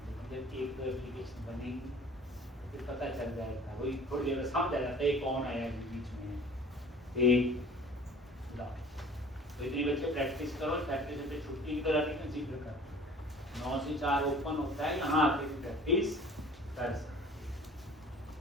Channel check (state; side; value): normal; both; correlation 0.47